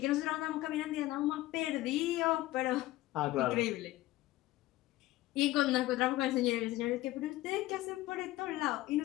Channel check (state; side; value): quieter; right; 17.0 dB